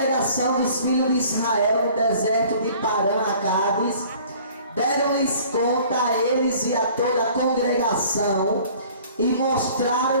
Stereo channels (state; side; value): inverted; both; correlation -0.51